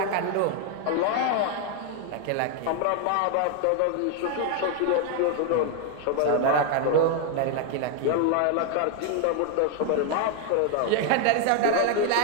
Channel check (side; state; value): both; different; correlation 0.01